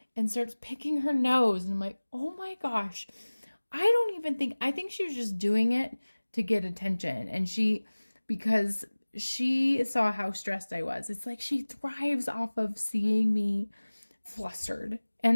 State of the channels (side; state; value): both; inverted; correlation -1.00